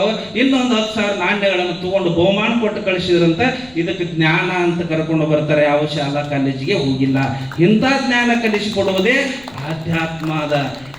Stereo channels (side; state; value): left; noise; rumble, 25 dB below the sound